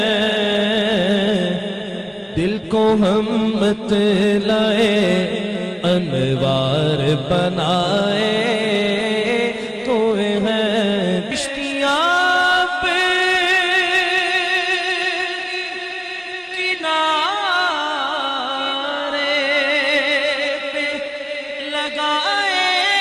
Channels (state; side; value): identical; both; correlation 1.00